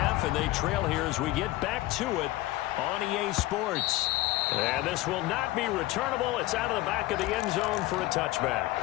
and they trail here as we get back to it on EA Sports. And this will not be returnable. It's out of the back of the end zone for a touchback.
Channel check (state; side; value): quieter; right; 17.8 dB